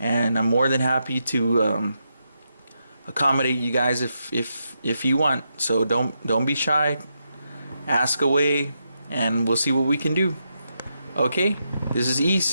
I'm more than happy to accommodate you guys if you want. So don't be shy, ask away, and we'll see what we can do. Okay, this is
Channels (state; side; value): inverted; both; correlation -0.84